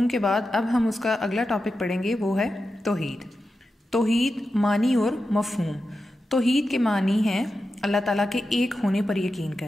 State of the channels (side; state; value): both; normal; correlation 0.90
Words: کے بعد اب ہم اس کا اگلا ٹاپک پڑھیں گے، وہ ہے توحید۔ توحید معنی اور مفہوم۔ توحید کے معنی ہیں اللہ تعالیٰ کے ایک ہونے پر یقین